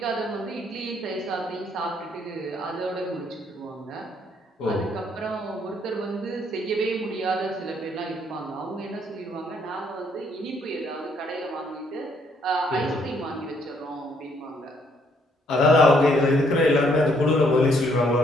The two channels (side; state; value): both; normal; correlation 0.68